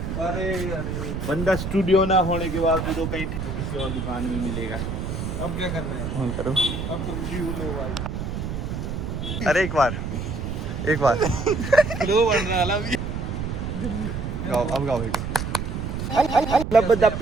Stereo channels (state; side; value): noise; right; rumble, 4 dB below the sound